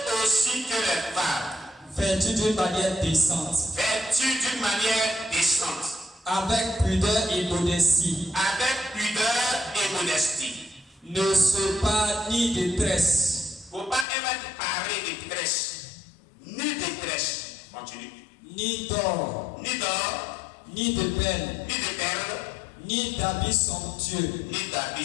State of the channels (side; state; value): right; drops out; at 14.1 s